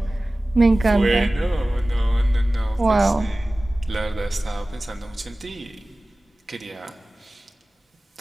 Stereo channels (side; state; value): both; normal; correlation 0.97